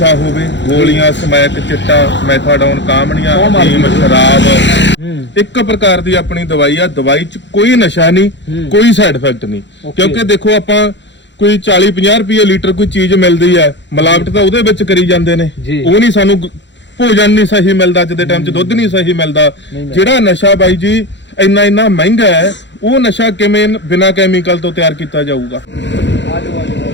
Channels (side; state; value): right; late; 0.52 ms